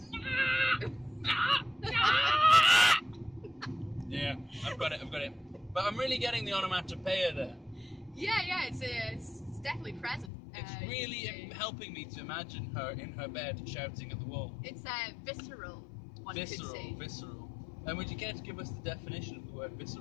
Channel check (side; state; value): right; drops out; at 10.3 s